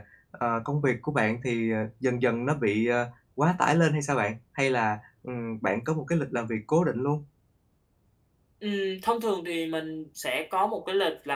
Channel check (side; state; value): both; identical; correlation 1.00